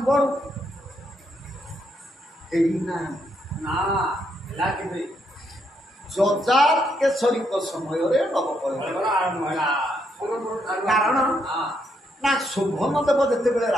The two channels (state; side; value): normal; both; correlation 0.76